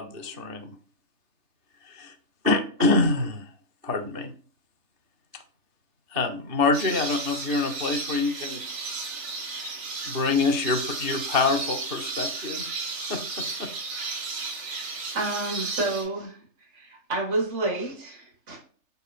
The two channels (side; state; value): left; late; 3.3 ms